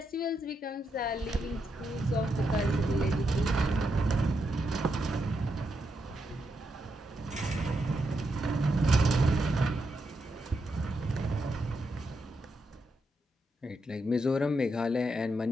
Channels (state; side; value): normal; both; correlation 0.83